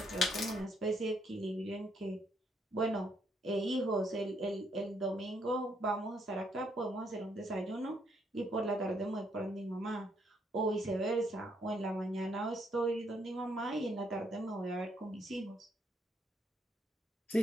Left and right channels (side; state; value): both; normal; correlation 0.73